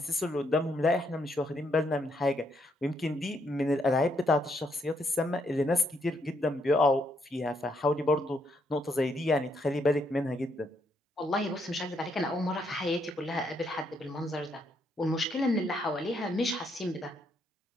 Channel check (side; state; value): both; normal; correlation 0.74